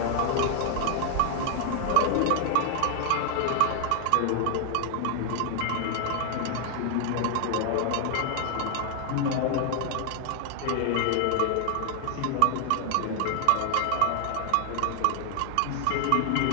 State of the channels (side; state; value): both; different; correlation 0.00